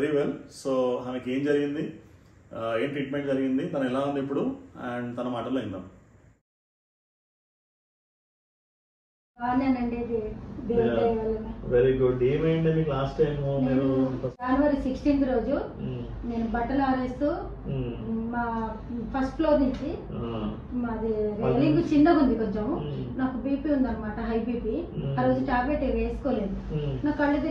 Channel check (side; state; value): both; identical; correlation 1.00